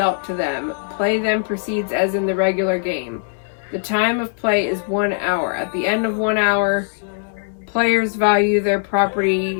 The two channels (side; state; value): right; silent; digital silence